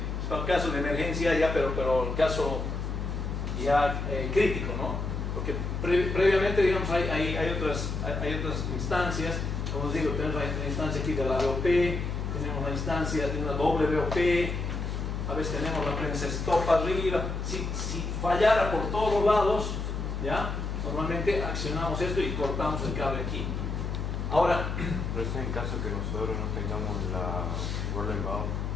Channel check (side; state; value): left; noise; hum, 3 dB below the sound